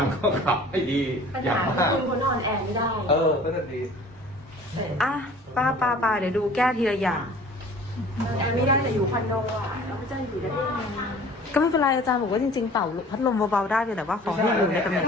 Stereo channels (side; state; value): both; normal; correlation 0.47